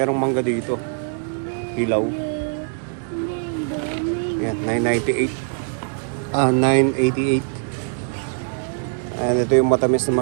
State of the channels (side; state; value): left; silent; 61 dB below the other